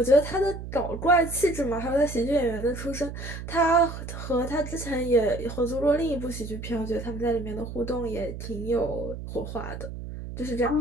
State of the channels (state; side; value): noise; right; hum, 9 dB below the sound